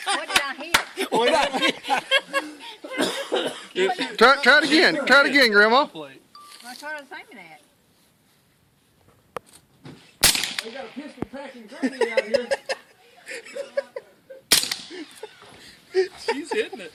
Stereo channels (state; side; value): identical; both; correlation 1.00